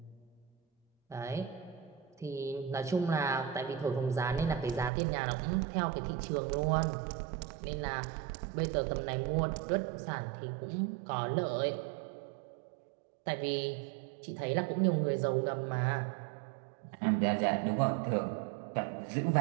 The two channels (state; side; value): drops out; left; at 4.9 s